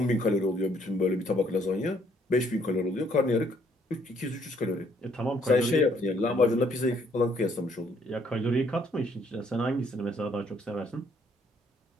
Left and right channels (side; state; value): both; normal; correlation 0.67